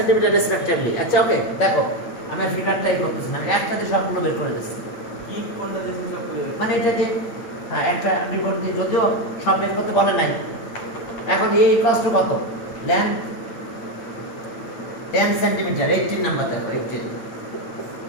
রেসপেক্টিভলি। আচ্ছা ওকে, দেখো আমি ফিগারটাই করতেছি না, আমি একসাথে সবগুলো বের করে দিচ্ছি। কি কোনটা দেশে সবগুলো? মানে এটা যে হ্যাঁ একটা রিপোর্ট দিয়ে, যদিও সব বের করতে বলে নাই। এখন এই কষ্ট কত? লেন্থ 10 সেন্টিমিটার, 18 নাম্বার দেখো, 18,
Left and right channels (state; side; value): late; right; 8.9 ms